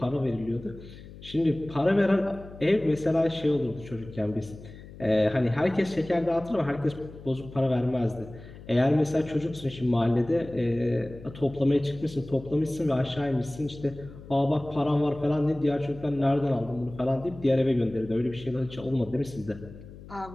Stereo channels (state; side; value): noise; left; hum, 17 dB below the sound